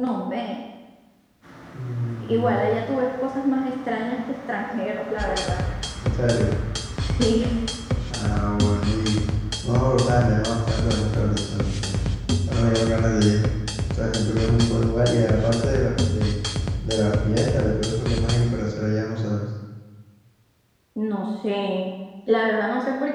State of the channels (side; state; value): both; identical; correlation 1.00